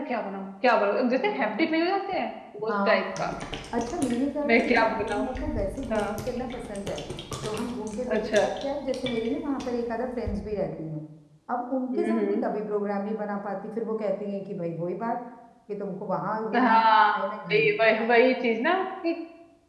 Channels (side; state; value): both; identical; correlation 1.00